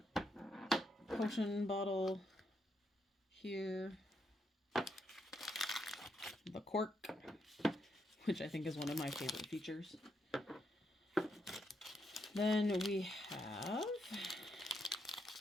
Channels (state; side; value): normal; both; correlation 0.79